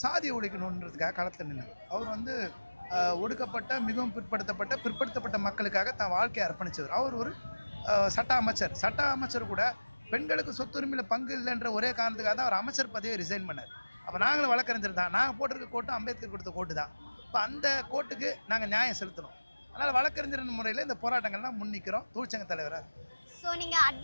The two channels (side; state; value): both; inverted; correlation -1.00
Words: சாதியை ஒழிக்கணுன்றதுக்காக களத்தில் நின்றவர். அவர் ஒடுக்கப்பட்ட மிகவும் பிற்படுத்தப்பட்ட மக்களுக்காக தான் வாழ்க்கையை அர்ப்பணித்தவர். அவர் ஒரு சட்ட அமைச்சர் கூட பெண்களுக்கு சொத்துரிமையில் பங்கு இல்லைன்ற ஒரே காரணத்துக்காக தான் அவர் அமைச்சர் பதவியை ரிசைன் பண்ணார். அப்போ நாங்களும் வழக்கறிஞர் தான். நாங்கள் போட்டிருக்க கோட்டும் அம்பேத்கர் கொடுத்த கோட்டு தான். இப்போ அந்த கோட்டுக்கு நாங்கள் நியாயம் செலுத்தணும். அதனால் வழக்கறிஞர் முறையில் இந்த போராட்டங்கள்லாம் முன்னிக்கிறோம். தொழிற்சங்க தலைவராக இருக்கும். ஸோ நீங்கள்